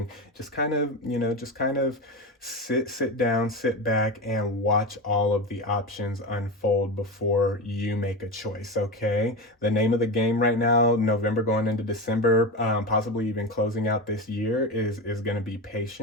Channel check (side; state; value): both; normal; correlation 0.20